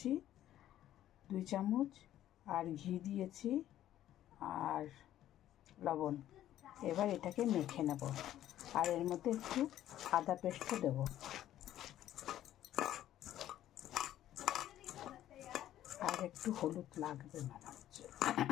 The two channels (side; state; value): right; quieter; 12.5 dB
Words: 2 চামচ, আর ঘি দিয়েছি আর লবণ। এবার এটাকে মেখে নেব, আর এর মধ্যে একটু আদা পেস্ট দেবো, আর একটু হলুদ লাগবে মনে হচ্ছে।